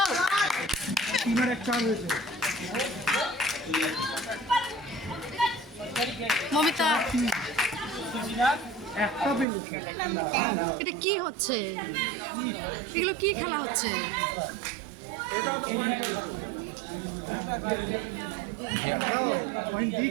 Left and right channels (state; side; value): drops out; left; at 9.5 s